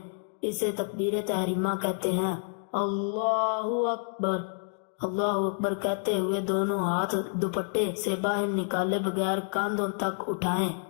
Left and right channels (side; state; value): right; silent; digital silence